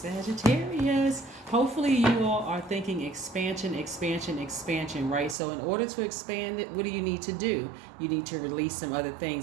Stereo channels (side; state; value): left; drops out; at 5.4 s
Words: Hopefully you all are thinking expansion, expansion, expansion, right? So in order to expand it, what do you need to do? You need to release some other